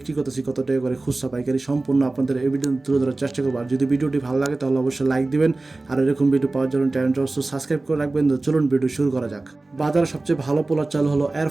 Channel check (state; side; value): quieter; left; 3.1 dB